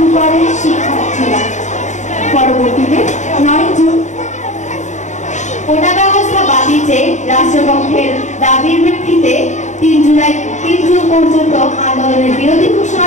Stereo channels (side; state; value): right; late; 0.34 ms